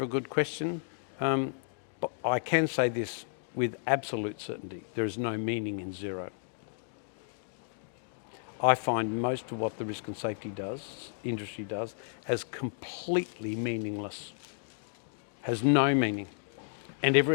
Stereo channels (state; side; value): silent; right; digital silence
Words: good question. But I can say this with absolute certainty. There is no meaning in zero. I find most of what the risk and safety industry does, as completely meaningless. Has no meaning. And